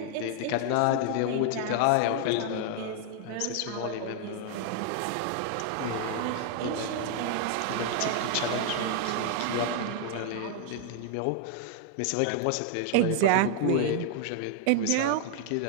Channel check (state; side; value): different; both; correlation 0.00